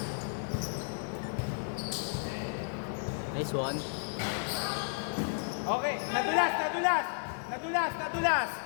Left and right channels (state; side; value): silent; right; 56 dB below the other